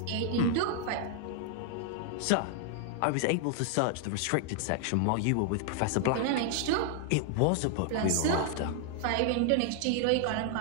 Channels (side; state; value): both; different; correlation 0.00